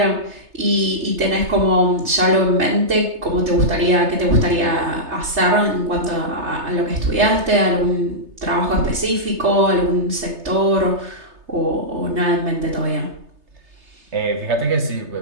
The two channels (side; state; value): left; late; 3.3 ms